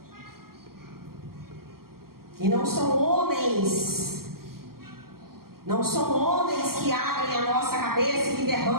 E não são homens que abrem a nossa cabeça e que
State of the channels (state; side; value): late; left; 0.93 ms